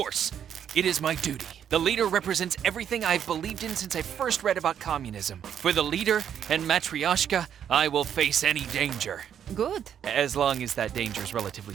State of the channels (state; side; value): quieter; left; 9.0 dB